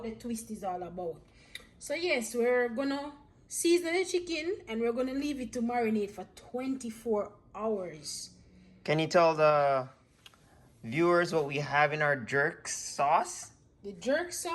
the twist is all about. So yes, we're gonna season the chicken and we're gonna leave it to marinate for 24 hours. Can you tell the viewers what we have in our jerk sauce? The jerk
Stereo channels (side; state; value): both; identical; correlation 1.00